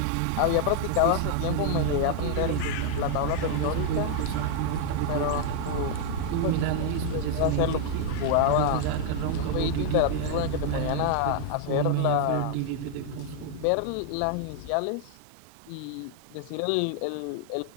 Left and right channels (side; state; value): both; different; correlation 0.00